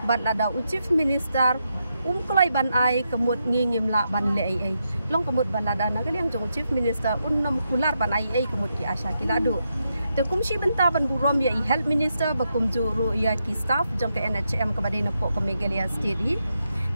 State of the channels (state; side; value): inverted; both; correlation -0.83